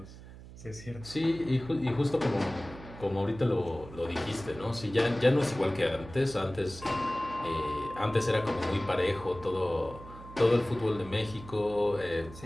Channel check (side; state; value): right; noise; hum, 16 dB below the sound